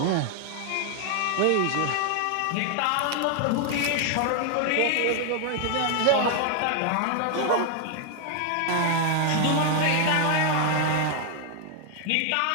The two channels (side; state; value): both; different; correlation 0.00